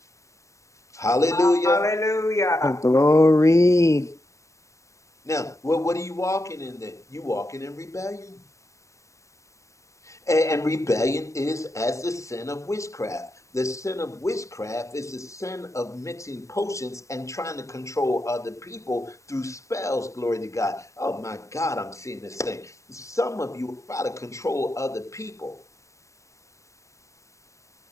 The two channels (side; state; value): right; late; 0.15 ms